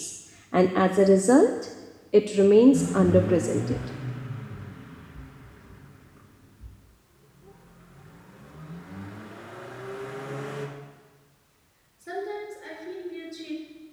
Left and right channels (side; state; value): both; identical; correlation 1.00